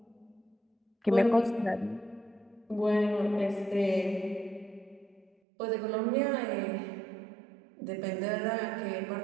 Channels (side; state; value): left; drops out; at 5.3 s